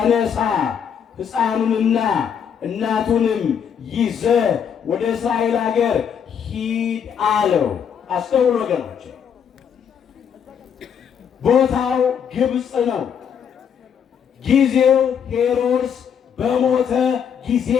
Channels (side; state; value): right; quieter; 7.8 dB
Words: ሕፃኑንና እናቱንም ይዘህ ወደ እስራኤል ሀገር ሂድ አለው። አስተውሉ ወገኖች፣ ቦታው ግብፅ ነው። ጊዜው ሄሮድስ በሞተ ጊዜ